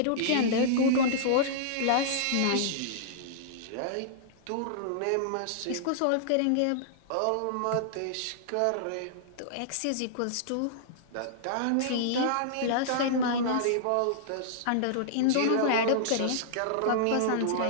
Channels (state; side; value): different; both; correlation -0.02